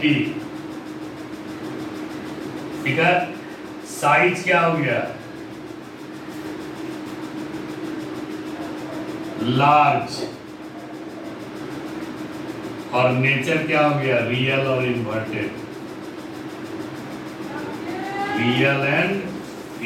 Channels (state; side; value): identical; both; correlation 1.00